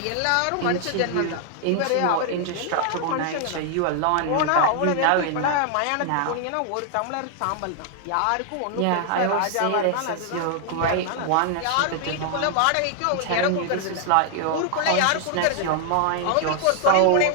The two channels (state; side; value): different; both; correlation 0.00